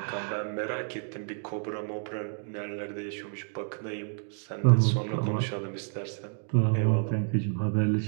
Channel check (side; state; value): left; silent; 58 dB below the other